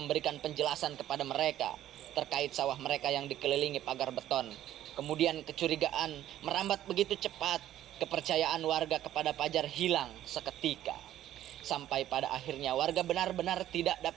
penjelasan kepada mereka terkait sawah mereka yang dikelilingi pagar beton. Kemudian kecurigaan merambat begitu cepat, kepercayaan warga kepada Fajar hilang seketika. Sampai pada akhirnya warga benar-benar tidak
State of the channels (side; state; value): left; quieter; 12.6 dB